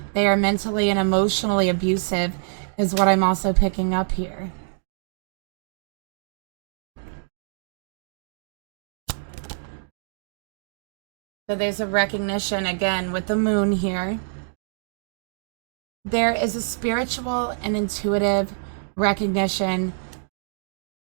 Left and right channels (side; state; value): left; silent; digital silence